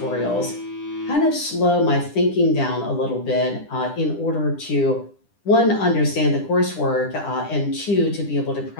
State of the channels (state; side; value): late; right; 10 ms